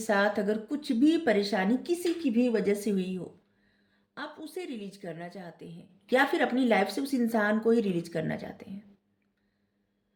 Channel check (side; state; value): both; identical; correlation 1.00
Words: अगर कुछ भी परेशानी किसी की भी वजह से हुई हो, आप उसे रिलीज करना चाहते हैं, या फिर अपनी लाइफ से उस इंसान को ही रिलीज करना चाहते हैं।